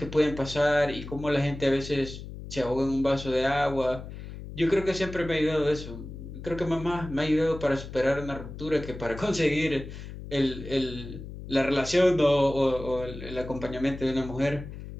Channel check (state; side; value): noise; left; hum, 11 dB below the sound